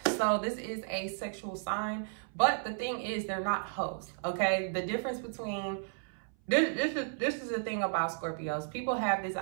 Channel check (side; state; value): left; silent; 56 dB below the other